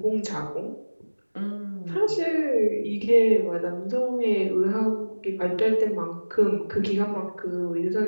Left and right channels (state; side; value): inverted; both; correlation -1.00